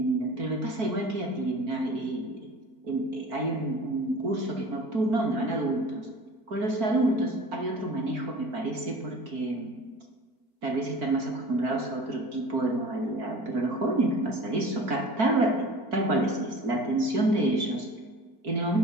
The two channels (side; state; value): left; late; 4.5 ms